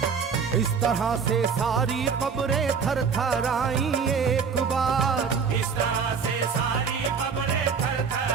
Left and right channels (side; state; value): left; quieter; 6.0 dB